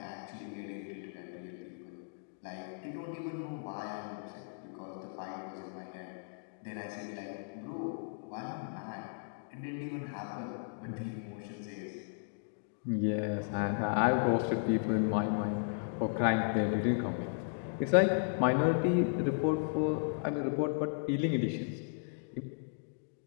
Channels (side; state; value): right; silent; digital silence